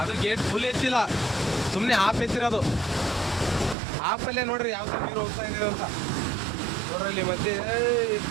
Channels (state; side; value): drops out; left; at 3.8 s